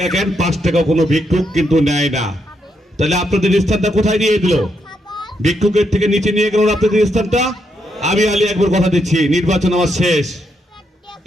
কেন 5 টাকা কোনো ভিক্ষুক কিন্তু নেয় না। তাহলে আপনাদের স্থানটা কোথায় নিয়ে দিল? ভিক্ষুকের থেকে নিচে নিয়ে গেল আপনাদের স্থানটা। আমি আলী আকবর কথা দিচ্ছি, নির্বাচন আমার শেষ,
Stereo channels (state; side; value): normal; both; correlation 0.79